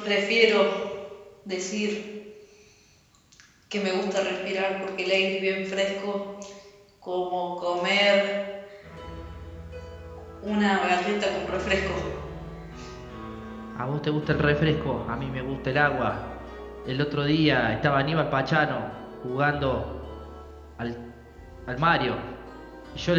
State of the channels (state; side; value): identical; both; correlation 1.00